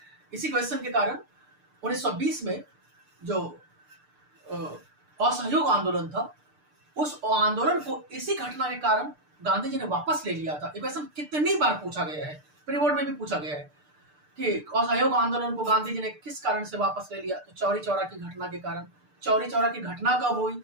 इसी क्वेश्चन के कारण 1920 में जो असहयोग आंदोलन था, उस आंदोलन को इसी घटना के कारण गांधी जी ने वापस ले लिया था। ये क्वेश्चन कितनी बार पूछा गया है, प्री बोर्ड में भी पूछा गया है कि असहयोग आंदोलन को गांधी जी ने किस कारण से वापस ले लिया। तो चौरी चौरा की घटना के कारण। चौरी चौरा की घटना कब हुई?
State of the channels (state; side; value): late; left; 6.7 ms